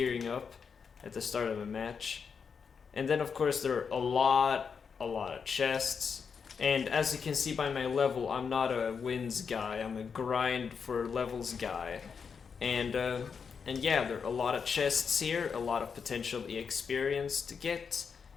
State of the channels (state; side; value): quieter; right; 6.1 dB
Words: up at the start of a match. And then of course there are a lot of chests. And as you can see by my level, I'm not a wins guy, I'm a grind for levels guy. And yeah, there are a lot of chests here, a lot of potential experience to get.